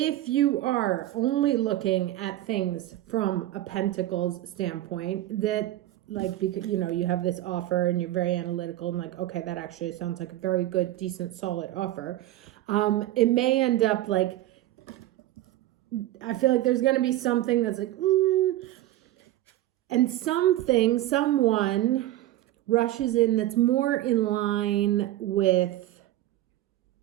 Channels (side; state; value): left; quieter; 14.8 dB